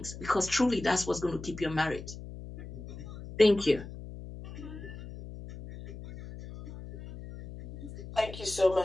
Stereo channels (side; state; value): left; noise; hum, 12 dB below the sound